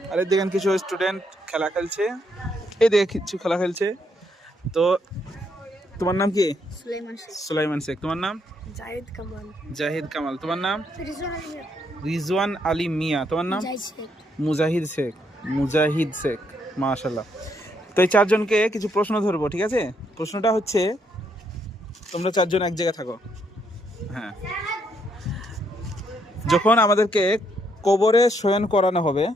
আর এই দেখেন কিছু স্টুডেন্ট খেলা খেলছে, এই দেখে কিছু খেলা খেলছে। তো তোমার নাম কি? সুলাইমান শেখ। তোমার নাম? জাহিদ কামাল। তোমার নাম? রিজওয়ান আলী মিয়া। তোমার নাম? মুজাহিদ শেখ। মাশাআল্লাহ। তো এই 4 জনকে কিছু প্রশ্ন ধরবো, ঠিক আছে? প্রশ্নটা হচ্ছে, তোমরা 4 জন এক জায়গায় থাকো। হ্যাঁ, যখন আমাদেরকে কবরে শয়ন করানো হবে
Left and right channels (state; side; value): normal; both; correlation 0.74